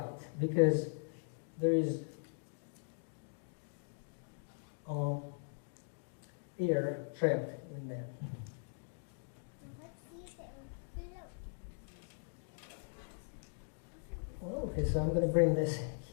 because there is air trapped in there. Well, okay, so I'm going to bring this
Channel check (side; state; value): right; silent; digital silence